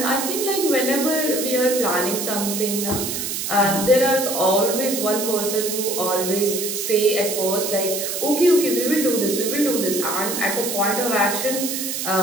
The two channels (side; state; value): right; noise; hiss, 3 dB below the sound